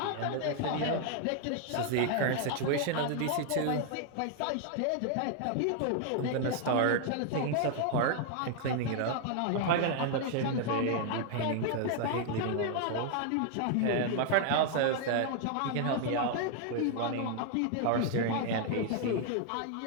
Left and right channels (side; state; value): both; different; correlation 0.00